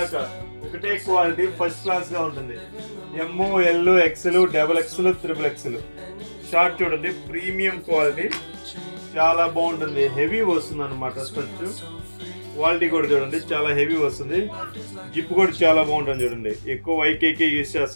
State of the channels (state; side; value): inverted; both; correlation -1.00